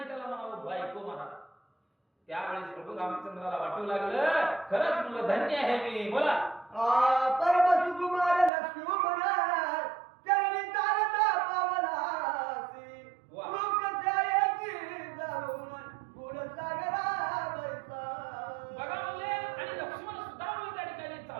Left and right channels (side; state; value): left; drops out; at 8.5 s